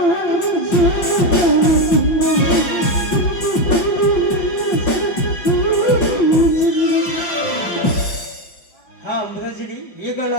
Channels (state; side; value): late; right; 5.7 ms